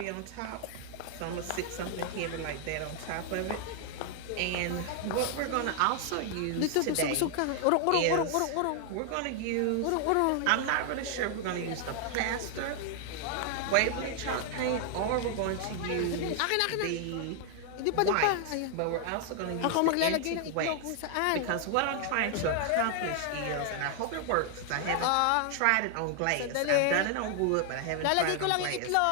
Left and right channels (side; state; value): both; different; correlation 0.00